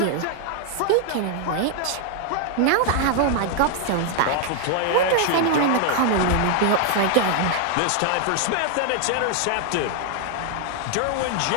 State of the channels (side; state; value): both; different; correlation 0.00